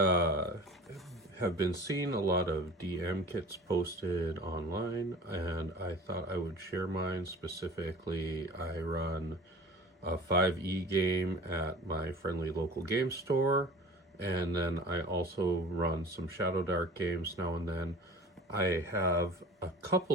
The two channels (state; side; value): normal; both; correlation 0.42